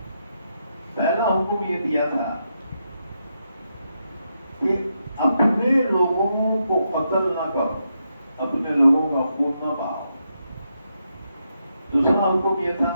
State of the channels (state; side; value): inverted; both; correlation -0.82